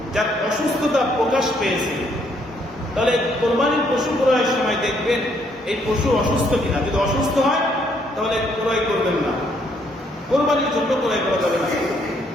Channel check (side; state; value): both; normal; correlation 0.69